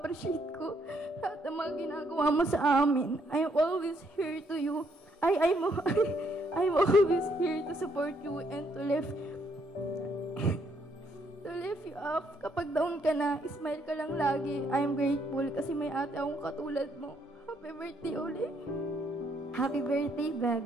ko lahat ng mga ginagawa mo sa amin. I'm always here to you. I'm always here to support you and to lift you up. Kapag down ka na, smile ka lang lagi. I'm grateful kasi may ate akong katulad mo. Happy birthday ulit. Happy birthday,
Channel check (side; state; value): both; normal; correlation 0.71